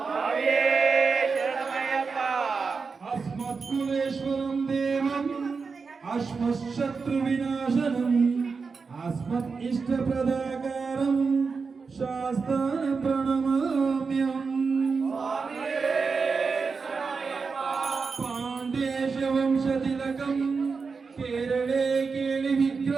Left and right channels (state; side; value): quieter; left; 4.9 dB